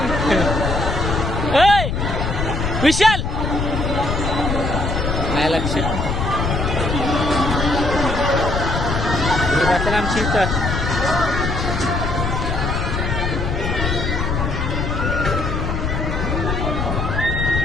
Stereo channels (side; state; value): left; noise; rumble, 1 dB below the sound